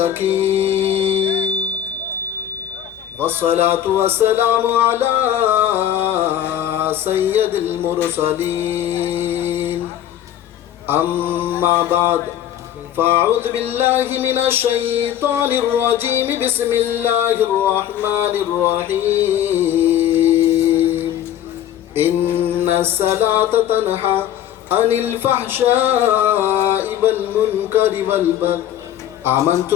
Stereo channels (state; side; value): quieter; right; 10.9 dB